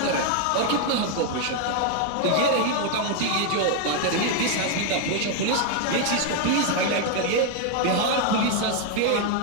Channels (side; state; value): both; different; correlation 0.00